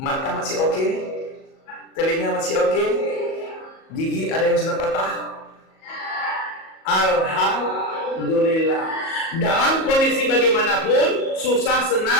masih oke? Telinga masih oke? Gigi ada yang sudah patah? Alhamdulillah. Dalam kondisi bagaimanapun, susah,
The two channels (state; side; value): late; right; 37 ms